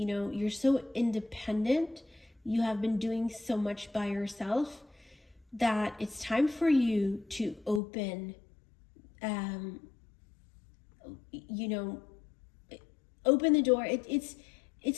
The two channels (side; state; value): right; drops out; at 7.8 s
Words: so independent. You have been doing so much by yourself that it's time for you to open, open the door.